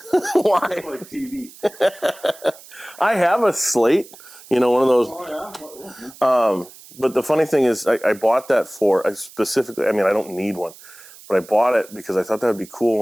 Why? It's like TV. I have a slate, one of those. Oh, yeah? But the funny thing is, I bought that I don't need one, but I bought it because I thought that would be cool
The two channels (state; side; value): noise; right; hiss, 21 dB below the sound